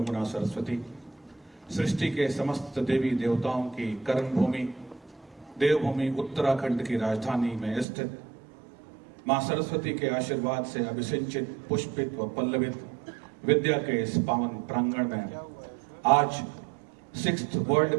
Saraswati सृष्टि के समस्त देवी देवताओं की कर्म भूमि देवभूमि उत्तराखंड की राजधानी में स्थित मां सरस्वती के आशीर्वाद से अभिसिंचित पुष्पित व पल्लवित विद्या के इस पावन प्रांगण में आज 6th world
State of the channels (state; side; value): drops out; left; at 7.9 s